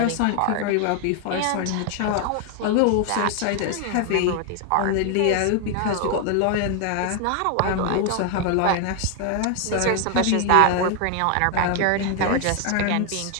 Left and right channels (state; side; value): different; both; correlation 0.00